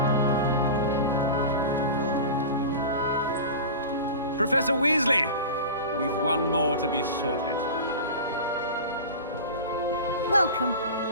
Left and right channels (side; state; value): both; inverted; correlation -0.31